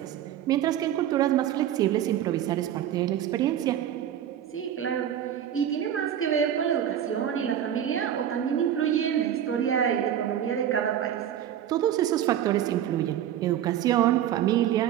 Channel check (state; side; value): quieter; left; 10.5 dB